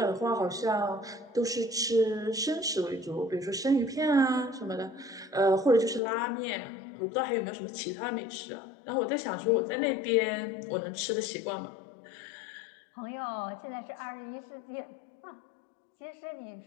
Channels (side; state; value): right; drops out; at 6.0 s